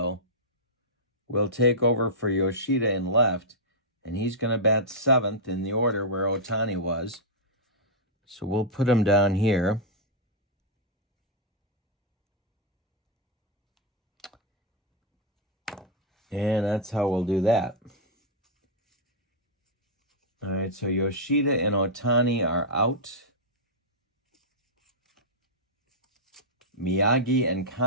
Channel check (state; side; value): normal; both; correlation -0.07